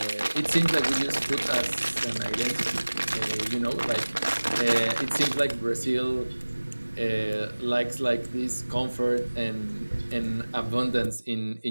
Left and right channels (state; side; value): inverted; both; correlation -1.00